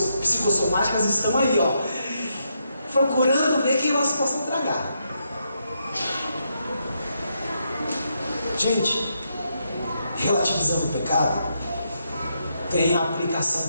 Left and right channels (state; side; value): inverted; both; correlation -0.80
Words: psicossomáticas estão aí, ó, procurando ver quem elas possam tragar. Gente, relativizando o pecado, tem a